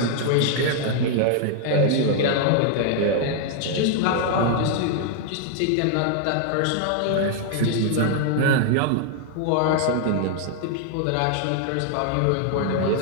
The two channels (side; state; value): both; different; correlation 0.00